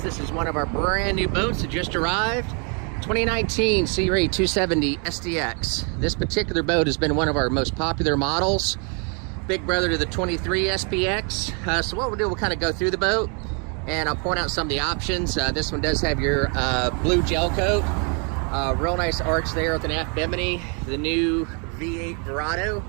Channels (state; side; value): quieter; left; 37.3 dB